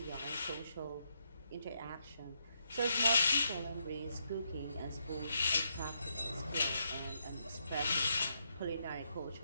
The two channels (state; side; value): inverted; both; correlation -0.79